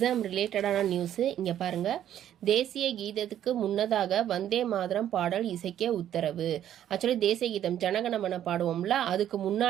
ரிலேட்டடான நியூஸு. இங்கே பாருங்கள், தேசிய கீதத்துக்கு முன்னதாக வந்தே மாதரம் பாடல் இசைக்க உத்தரவு. ஆக்சுவலி தேசிய கீதம் ஜனகணமன பாடுவோம்ல, அதுக்கு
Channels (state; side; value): quieter; left; 10.9 dB